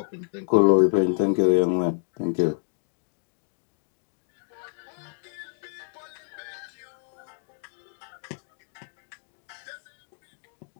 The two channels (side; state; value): right; silent; digital silence